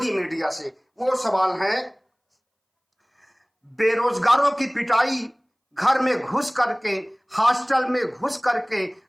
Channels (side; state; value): both; identical; correlation 1.00